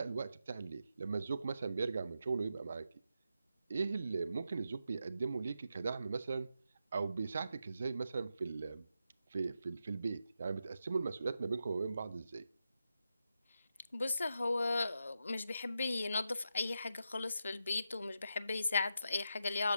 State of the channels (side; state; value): both; inverted; correlation -0.86